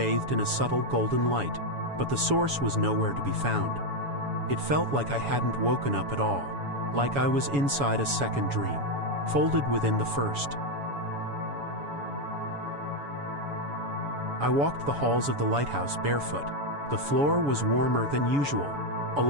in a subtle golden light, but the source was nowhere to be found. It felt like I hadn't woken up at all, like I was inside a second dream, folded within the first. I walked the halls of the lighthouse barefoot. The floor was warmer than usual,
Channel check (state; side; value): late; left; 7.1 ms